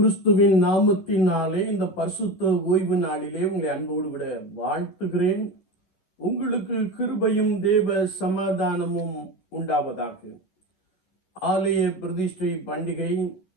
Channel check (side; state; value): right; late; 11 ms